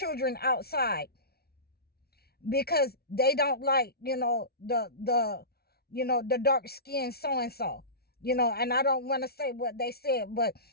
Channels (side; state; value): right; late; 0.45 ms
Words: outside because they don't like, the dark skin so and so. And I don't want to say what they said, but